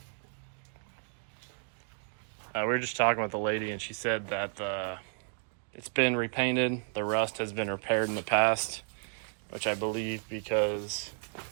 We were just talking with the lady, and she said that it's been repainted. The rust has been repaired in the past, which I believe because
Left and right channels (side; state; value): left; silent; 56 dB below the other